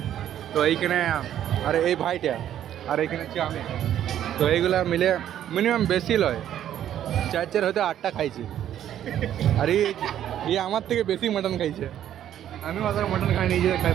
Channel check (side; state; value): left; quieter; 11.0 dB